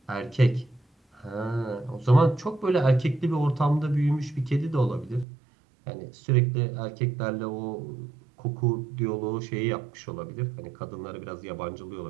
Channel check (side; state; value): left; drops out; at 5.2 s